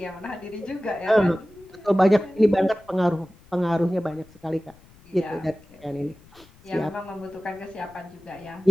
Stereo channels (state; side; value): noise; left; rumble, 26 dB below the sound